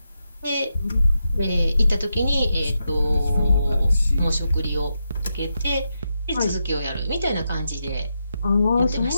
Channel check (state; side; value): inverted; both; correlation -0.85